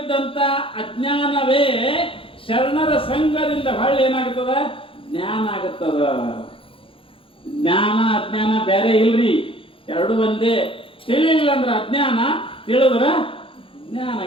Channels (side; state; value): right; late; 0.26 ms